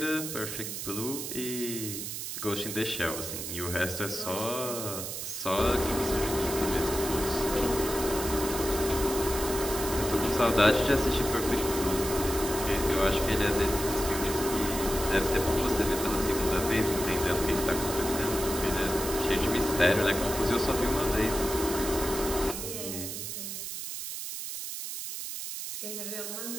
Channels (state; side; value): noise; right; hiss, 6 dB below the sound